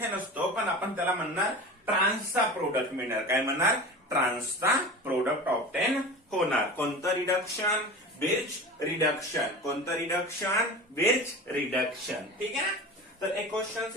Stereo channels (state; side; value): normal; both; correlation 0.33